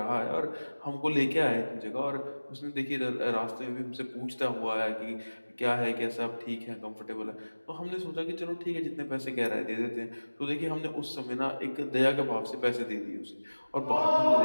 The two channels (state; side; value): inverted; both; correlation -1.00